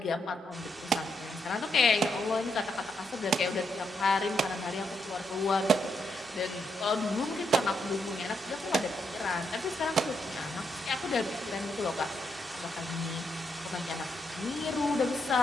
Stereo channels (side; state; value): both; normal; correlation 0.79